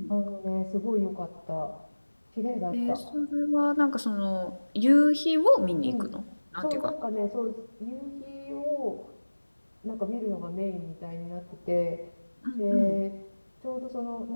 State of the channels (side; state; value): both; inverted; correlation -1.00